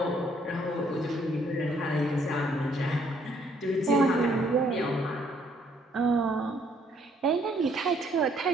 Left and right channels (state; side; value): normal; both; correlation 0.66